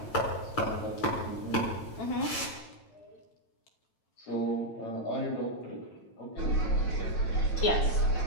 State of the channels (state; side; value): late; right; 9.1 ms